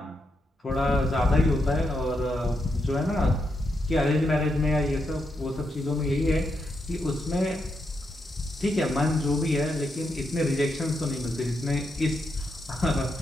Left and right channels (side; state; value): both; normal; correlation 0.82